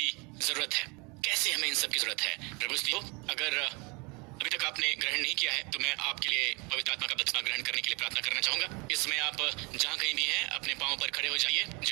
जरूरत है, कैसे हमें इन सब की जरूरत है। प्रभु स्तुति हो। अगर अभी तक आपने ग्रहण नहीं किया है तो मैं आपके लिए पवित्र आत्मा का बपतिस्मा ग्रहण करने के लिए प्रार्थना करना चाहूंगा। इसमें आप जहां कहीं भी हैं अपने पांव पर खड़े हो जाइए।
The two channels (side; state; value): left; quieter; 28.9 dB